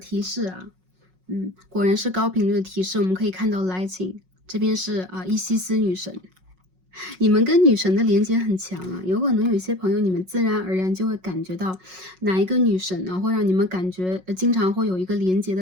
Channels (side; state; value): left; late; 5.4 ms